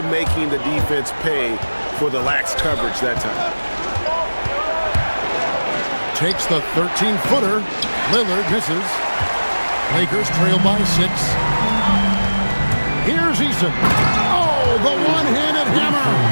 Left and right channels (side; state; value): both; inverted; correlation -1.00